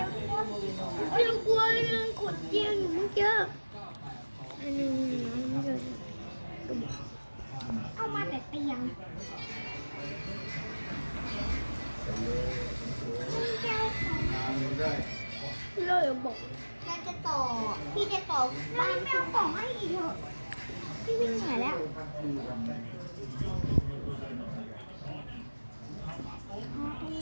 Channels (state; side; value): inverted; both; correlation -1.00